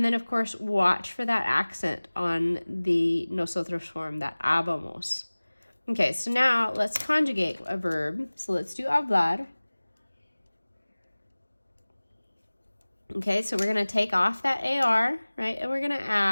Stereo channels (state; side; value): inverted; both; correlation -1.00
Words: then, of course, watch for that accent on the nosotros form, that habamos. Okay, so now let's conjugate a verb. So let's do hablar. Okay, so we're going to take off that AR, right? And we're going to